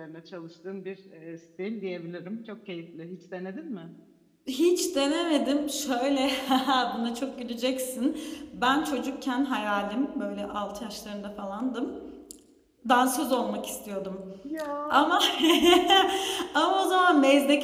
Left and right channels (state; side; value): identical; both; correlation 1.00